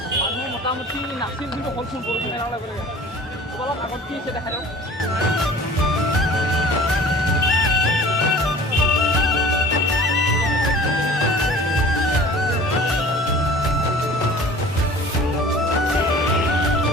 মানুহ মোটামুটি নাছিল কিন্তু হ'লচোন বৰষুণ মেলা লাগে অলপ আগত কি হৈছে দেখাই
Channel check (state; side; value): normal; both; correlation 0.45